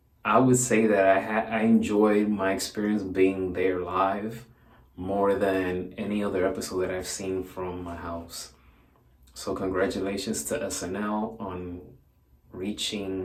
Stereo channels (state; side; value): identical; both; correlation 1.00